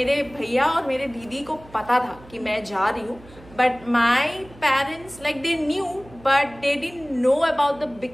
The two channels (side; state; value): right; noise; hum, 22 dB below the sound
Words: भैया और मेरे दीदी को पता था कि मैं जा रही हूँ, but my parents like they knew but they didn't know about the